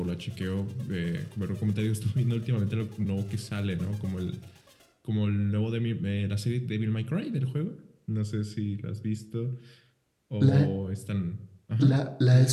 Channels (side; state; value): both; identical; correlation 1.00